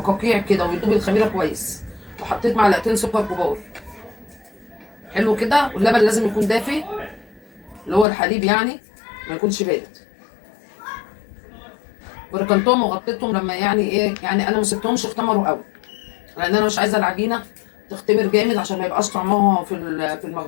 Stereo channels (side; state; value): right; drops out; at 8.1 s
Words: كده ويدوب الخميره كويس. وحطيت معلقتين سكر كبار. حلو كده. واللبن لازم يكون دافي اللي هو الحليب يعني، ما يكونش بارد. وركنتهم وغطيتهم لما يعني ايه يعني انا ما سبتهمش اختمروا قوي، لان انا مش عايزه العجينه تختمر جامد عشان ما يبقاش طعمها في